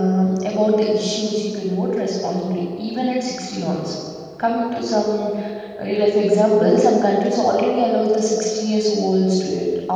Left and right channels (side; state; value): both; identical; correlation 1.00